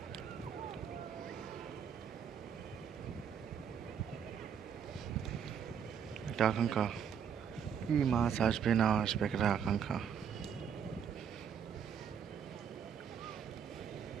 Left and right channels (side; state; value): left; quieter; 7.8 dB